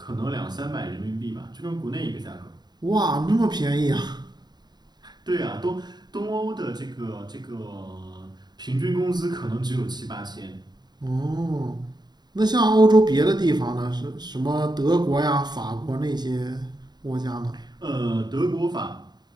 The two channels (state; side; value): late; left; 0.20 ms